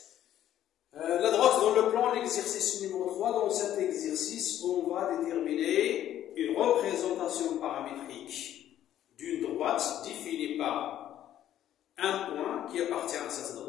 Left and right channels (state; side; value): quieter; right; 11.8 dB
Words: La droite dans le plan, l'exercice numéro 3. Dans cet exercice, on va déterminer une représentation paramétrique d'une droite définie par un point qui appartient à cette